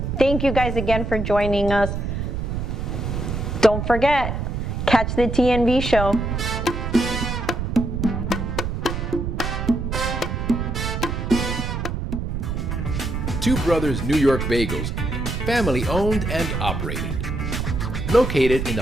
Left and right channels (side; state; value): right; noise; rumble, 2 dB below the sound